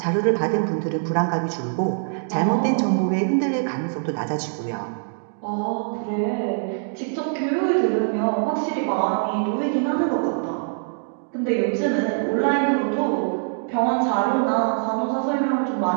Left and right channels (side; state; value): left; silent; digital silence